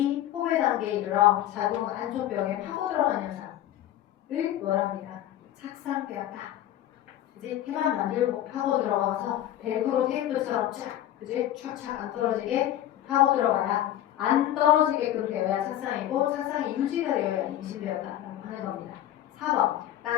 포배 단계에 이르러 자동 안쪽벽에 파고 들어간 현상을 뭐라 합니까? 착상되었다. 그지? 태만 만들고 파고 들어가서 벨크로 테이프처럼 쫙, 그지? 촥촥 안 떨어지게 파고 들어가야 안 떨어지게끔 되어야 착상이고 착상이 유지가 되어야 임신되었다라고 하는 겁니다. 4번.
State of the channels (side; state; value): right; quieter; 12.6 dB